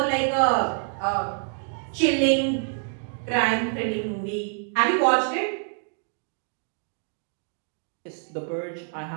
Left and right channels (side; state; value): left; silent; 61 dB below the other